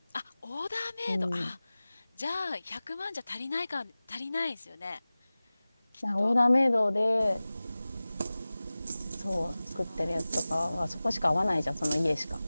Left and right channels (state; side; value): inverted; both; correlation -0.98